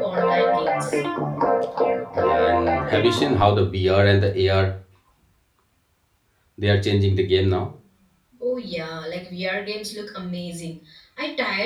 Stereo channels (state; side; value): identical; both; correlation 1.00